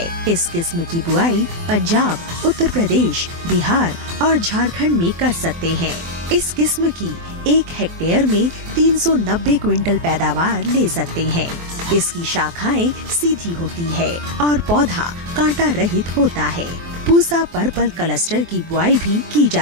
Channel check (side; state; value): left; late; 18 ms